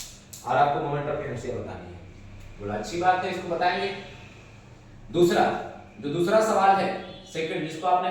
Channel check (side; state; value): both; identical; correlation 1.00